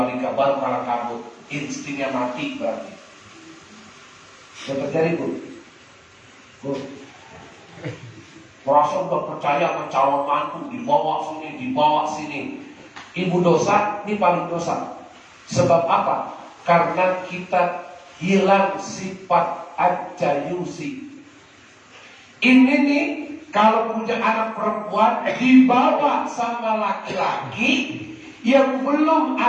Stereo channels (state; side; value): identical; both; correlation 1.00